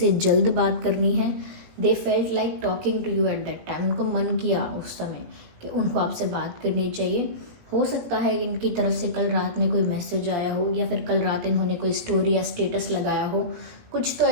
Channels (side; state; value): left; late; 18 ms